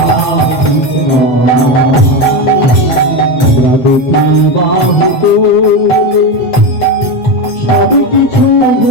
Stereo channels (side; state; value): right; late; 7.7 ms